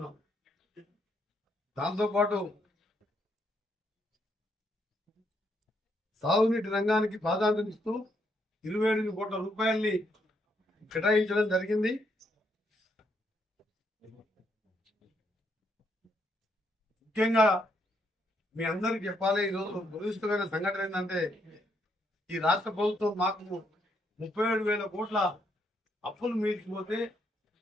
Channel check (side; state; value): both; normal; correlation 0.75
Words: దాంతోపాటు సాగునీటి రంగానికి ప్రాధాన్యత ఇస్తూ 27 కోట్ల రూపాయల్ని కేటాయించడం జరిగింది. ముఖ్యంగా మీ అందరికి చెప్పాలి, ఈరోజు దురదృష్టమైన సంఘటన ఏంటంటే ఈ రాష్ట్ర ప్రభుత్వం మాకు 37,000 కోట్ల అప్పులు మీల్చిపోతే